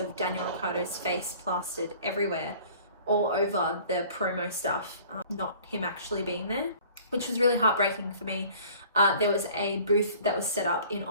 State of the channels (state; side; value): inverted; both; correlation -0.50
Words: Daniel Ricciardo's face plastered everywhere, all over the promo stuff, not him actually being there, which was really heartbreaking for me. There was a booth that was set up in